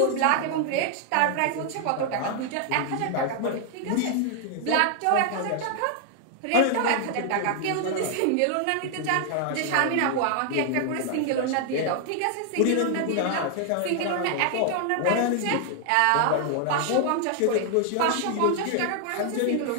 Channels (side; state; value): both; different; correlation 0.00